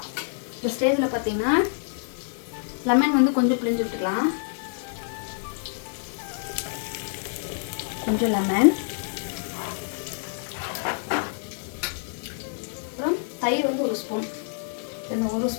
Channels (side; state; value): right; silent; 60 dB below the other